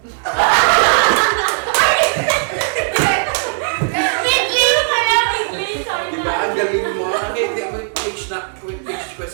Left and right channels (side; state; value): left; silent; digital silence